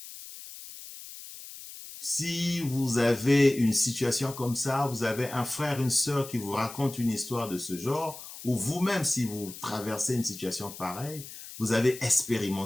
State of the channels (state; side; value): noise; left; hiss, 14 dB below the sound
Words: Si vous avez une situation comme ça, vous avez un frère, une sœur qui vous raconte une histoire de ce genre, ou vous-même, si vous traversez une situation pareille, vous avez